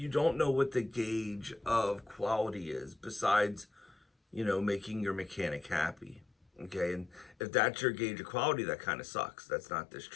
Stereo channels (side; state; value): right; drops out; at 7.4 s